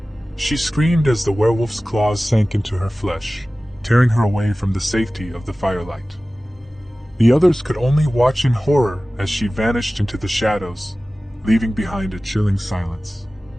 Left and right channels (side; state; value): both; normal; correlation 0.97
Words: She screamed as the werewolf's claws sank into her flesh, tearing her away from the safety of the firelight. The others could only watch in horror as she vanished into the shadows, leaving behind a chilling silence.